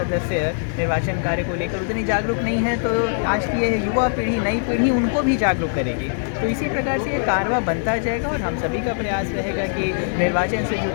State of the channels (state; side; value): silent; right; digital silence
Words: निर्वाचन कार्य को लेकर उतनी जागरूक नहीं है तो आज की ये युवा पीढ़ी, नई पीढ़ी उनको भी जागरूक करेगी। तो इसी प्रकार से ये कारवा बनता जाएगा और हम सभी का प्रयास रहेगा कि निर्वाचन से